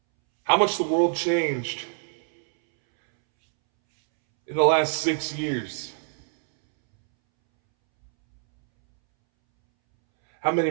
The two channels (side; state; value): left; silent; 62 dB below the other